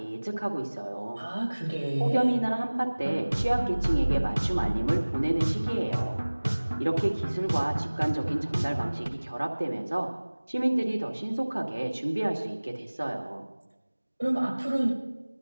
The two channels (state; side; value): inverted; both; correlation -1.00